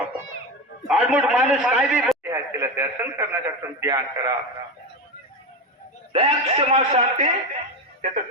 आडमुठ माणूस काय बी तिला दर्शन करण्यासाठी ध्यान करा. दयाक्षमा शांती त्याचं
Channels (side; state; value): both; normal; correlation 0.18